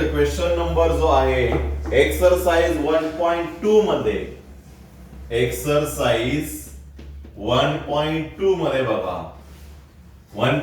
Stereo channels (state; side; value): identical; both; correlation 1.00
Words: क्वेश्चन नंबर जो आहे एक्सरसाइज 1.2 मध्ये, एक्सरसाइज 1.2 मध्ये बघा